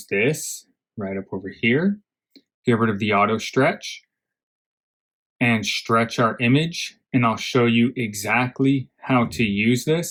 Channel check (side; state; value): both; identical; correlation 1.00